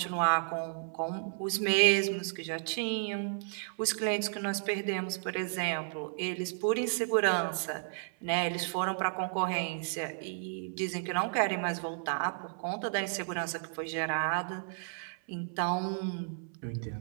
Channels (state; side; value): silent; left; 56 dB below the other